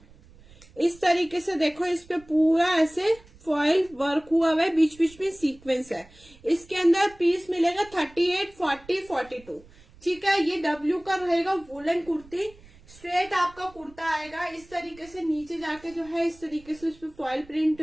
इस तरीके से। देखो इस पे पूरा ऐसे फॉइल वर्क हुआ हुआ है, बीच बीच में सीक्वेंस है। इसके अंदर पीस मिलेगा 38, 40, 42। ठीक है, ये डब्ल्यू का रहेगा वुलन कुर्ती। स्ट्रेट आपका कुर्ता आएगा इस तरीके से, नीचे जाके जो है इस तरीके से उस पर फॉइल प्रिंट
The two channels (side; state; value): right; noise; rumble, 24 dB below the sound